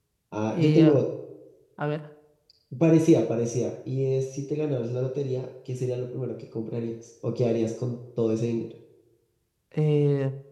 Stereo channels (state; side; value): identical; both; correlation 1.00